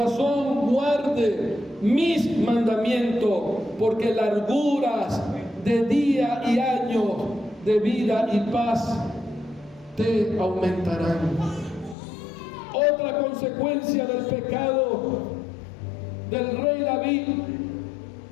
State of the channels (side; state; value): right; drops out; at 12.0 s